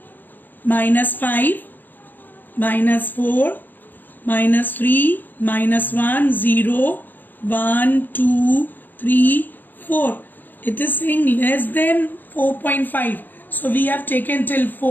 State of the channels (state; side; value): late; right; 0.087 ms